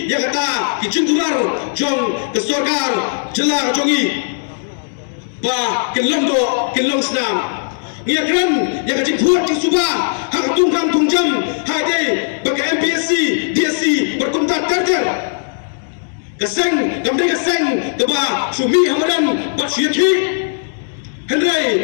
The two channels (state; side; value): silent; right; digital silence